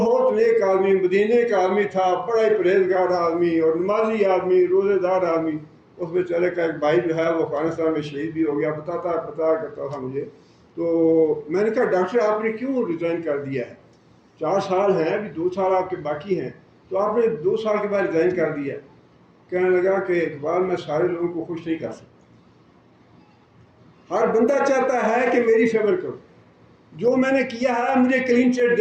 نیک آدمی، مدینے کا آدمی تھا، بڑا ہی پرہیزگار آدمی اور نمازی آدمی، روزے دار آدمی. اس بیچارے کا ایک بھائی جو ہے وہ افغانستان میں شہید بھی ہو گیا، پتا کرتا تھا مجھے. تو میں نے کہا ڈاکٹر آپ نے کیوں ریزائن کر دیا ہے؟ 4 سال ہیں، ابھی 2 سال آپ کے باقی ہیں، تو آپ نے 2 سال کے بعد ریزائن کر دیا. کہنے لگا کہ اقبال میں سارے لوگوں کو خوش نہیں کر سکتا. ہر بندہ چاہتا ہے کہ میری فیور کرو، جو میں نے کیا ہے مجھے کلین چٹ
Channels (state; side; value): identical; both; correlation 1.00